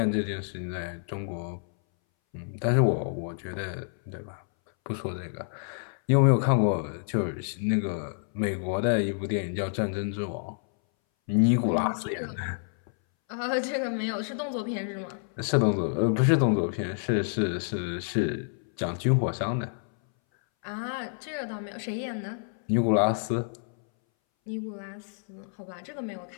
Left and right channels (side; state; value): right; silent; 59 dB below the other